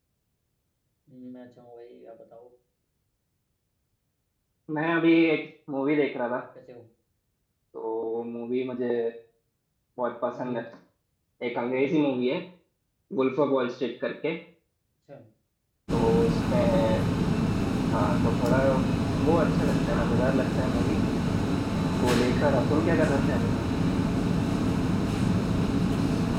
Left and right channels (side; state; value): both; identical; correlation 1.00